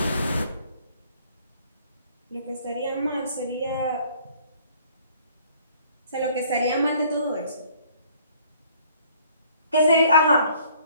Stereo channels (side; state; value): both; inverted; correlation -0.58